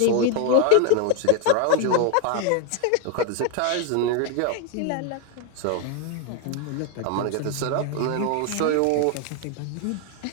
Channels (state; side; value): different; both; correlation 0.01